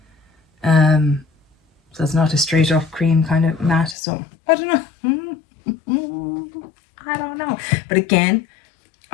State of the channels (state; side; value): drops out; right; at 4.0 s